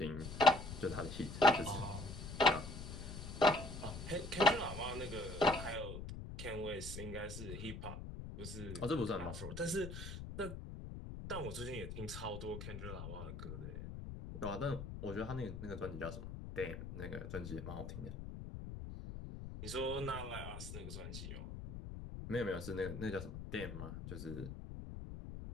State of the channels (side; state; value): left; noise; rumble, 8 dB below the sound